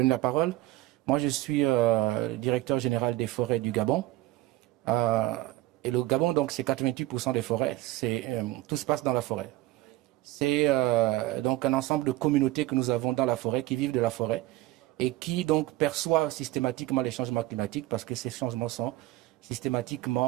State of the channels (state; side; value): quieter; left; 17.4 dB